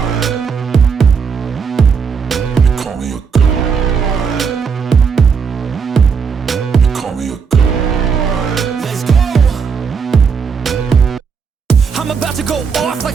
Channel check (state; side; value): quieter; left; 6.0 dB